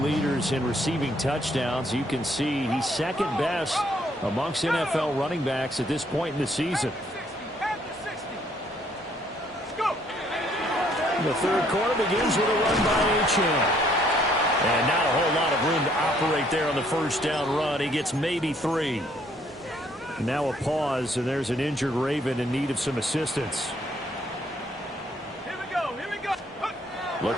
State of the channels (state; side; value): normal; both; correlation 0.66